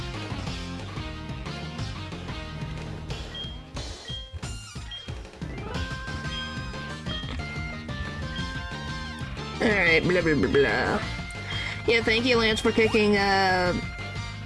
Alright, blah blah blah blah. Yeah, thank you, Lance, for kicking, Bad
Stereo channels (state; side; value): identical; both; correlation 1.00